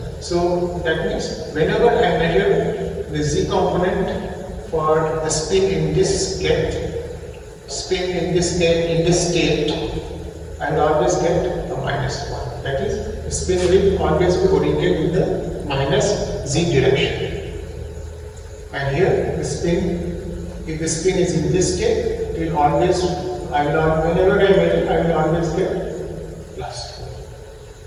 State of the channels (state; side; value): identical; both; correlation 1.00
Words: So that means whenever I measure the z component for the spin in this get, in this state, I will always get a minus 1. That is, the spin will always be oriented in the minus z direction. And here, the spin, if the spin is in this state, it will always, whenever I measure, I will always get plus 1.